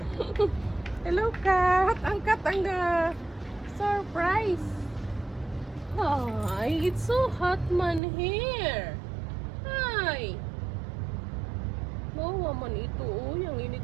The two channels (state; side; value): drops out; left; at 8.0 s